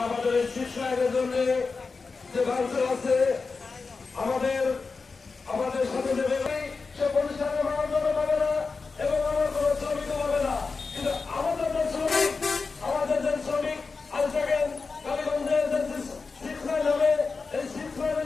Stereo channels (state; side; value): quieter; right; 4.4 dB